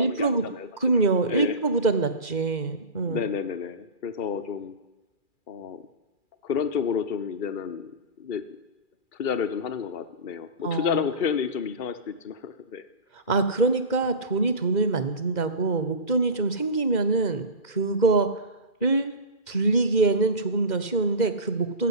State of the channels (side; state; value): right; late; 2.4 ms